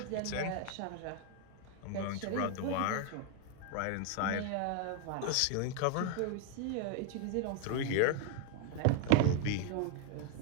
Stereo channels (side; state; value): both; different; correlation 0.00